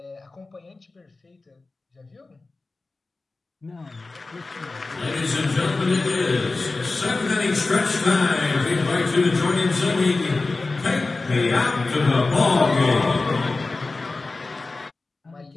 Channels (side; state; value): right; quieter; 3.5 dB